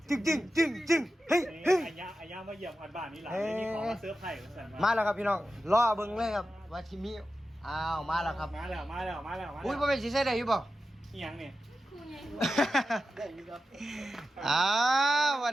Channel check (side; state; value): both; normal; correlation 0.92